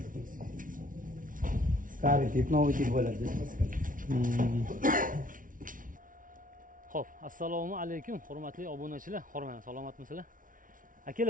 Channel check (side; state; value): left; late; 0.39 ms